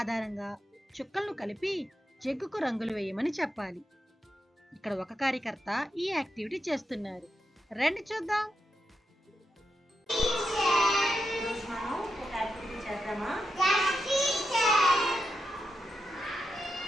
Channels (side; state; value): both; normal; correlation 0.86